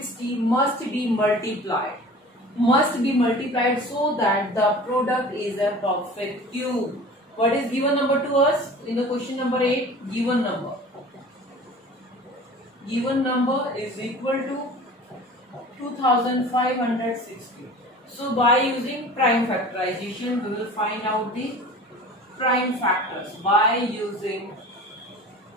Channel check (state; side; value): normal; both; correlation 0.41